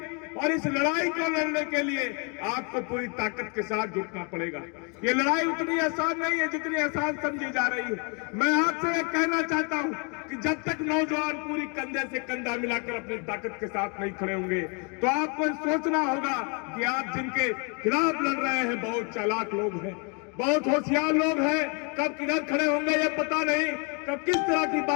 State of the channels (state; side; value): quieter; right; 35.5 dB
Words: और इस लड़ाई को लड़ने के लिए आपको पूरी ताकत के साथ जुटना पड़ेगा। ये लड़ाई उतनी आसान नहीं है जितनी आसान समझी जा रही है। मैं आपसे ये कहना चाहता हूं कि जब तक नौजवान पूरी कंधे से कंधा मिलाकर अपनी ताकत के साथ नहीं खड़े होंगे तो आपको सोचना होगा कि आप जिनके खिलाफ लड़ रहे हैं बहुत चालाक लोग हैं, बहुत होशियार लोग हैं। कब किधर खड़े होंगे ये पता नहीं, कब किस तरह की